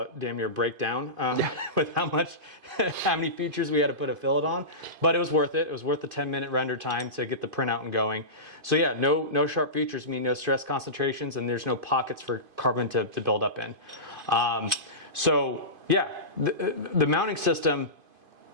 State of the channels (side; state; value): left; late; 2.5 ms